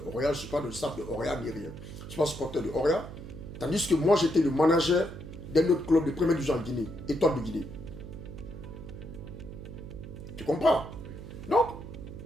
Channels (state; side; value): noise; right; hum, 11 dB below the sound